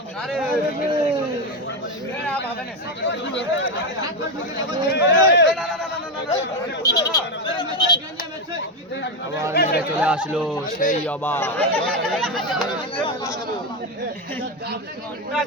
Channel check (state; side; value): normal; both; correlation 0.10